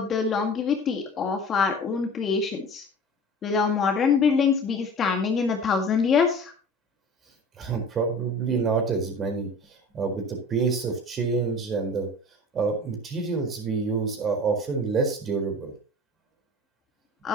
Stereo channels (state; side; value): normal; both; correlation 0.40